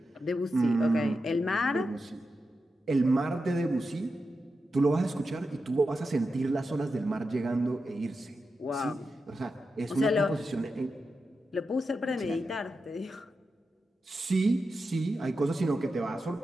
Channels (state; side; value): normal; both; correlation 0.89